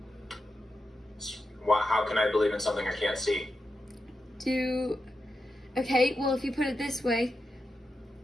How can I believe in something I can't see? Okay, well, if you put it this way,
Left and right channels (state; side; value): normal; both; correlation 0.88